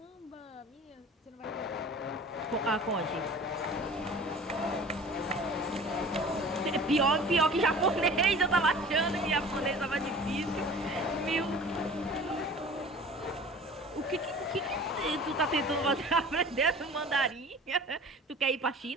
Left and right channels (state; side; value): normal; both; correlation 0.43